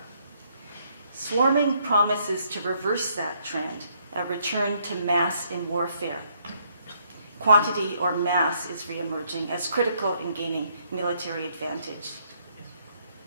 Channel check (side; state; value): both; inverted; correlation -0.70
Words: Swarming promises to reverse that trend, a return to mass in warfare. Quantity or mass is reemerging as critical in gaining military advantage.